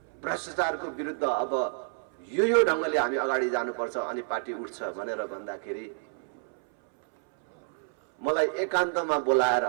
भ्रष्टाचारको विरुद्ध अब यो ढङ्गले हामी अगाडि जानुपर्छ अनि पार्टी उठ्छ भनेर भन्दाखेरि मलाई एकान्तमा बोलाएर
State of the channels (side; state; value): left; silent; 59 dB below the other